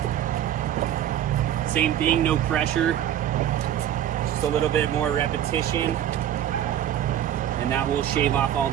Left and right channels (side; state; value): left; quieter; 11.1 dB